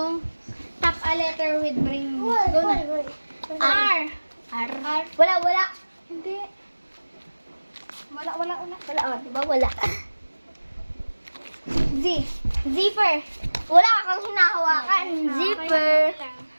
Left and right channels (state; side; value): inverted; both; correlation -1.00